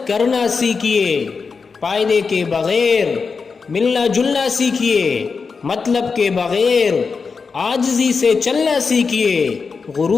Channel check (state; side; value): quieter; right; 5.0 dB